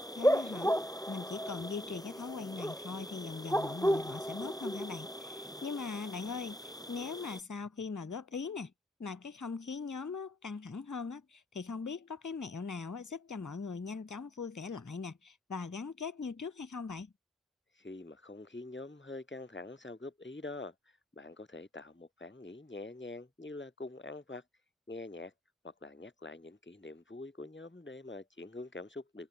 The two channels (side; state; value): both; normal; correlation 0.71